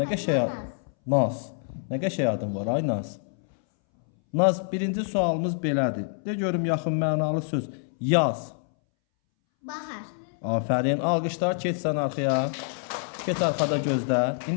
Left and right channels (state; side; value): silent; right; 61 dB below the other